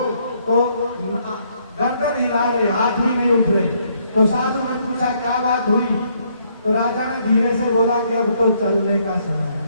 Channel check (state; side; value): inverted; both; correlation -0.70